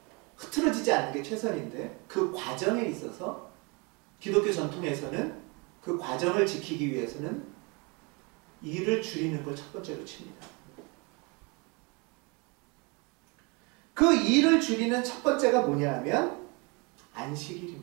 흐트러지지 않는 게 최선인데 그 과정에 있어서 기독교 전통에서는 그 과정을 지키기 위해서는 일을 줄이는 걸 첫 번째로 칩니다. 그 일을 줄이는 첫 번째가 뭐냐 하면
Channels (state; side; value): quieter; left; 29.9 dB